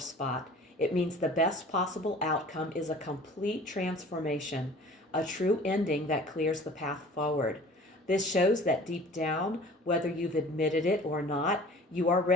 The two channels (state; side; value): normal; both; correlation 0.46